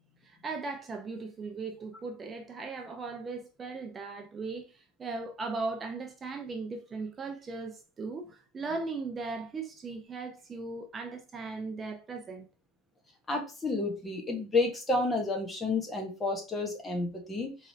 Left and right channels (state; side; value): normal; both; correlation 0.55